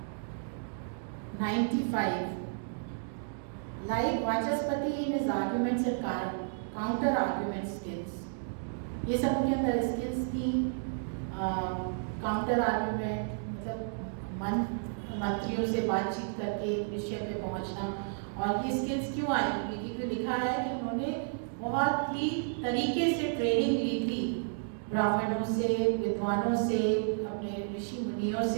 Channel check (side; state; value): left; silent; digital silence